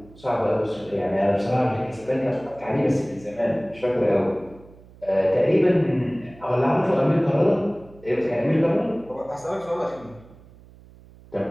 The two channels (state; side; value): noise; right; hum, 23 dB below the sound